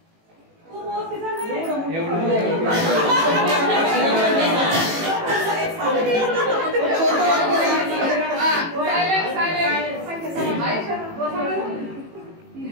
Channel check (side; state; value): left; late; 18 ms